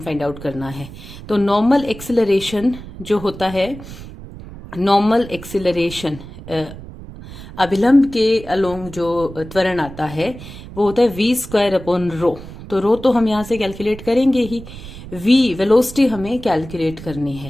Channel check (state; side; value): noise; right; rumble, 14 dB below the sound